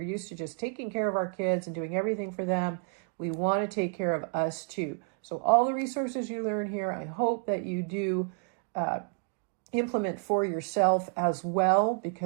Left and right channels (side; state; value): left; quieter; 39.3 dB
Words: to just taking care of our kids and doing everything for them. We want to take care of us too. So all the resources you learn here, I hope that you do implement for yourself as well,